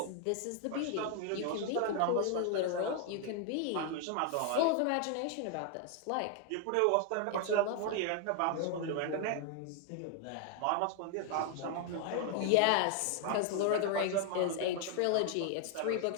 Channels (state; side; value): different; both; correlation 0.00